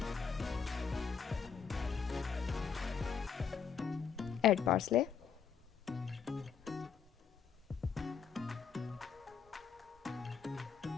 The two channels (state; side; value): quieter; right; 6.5 dB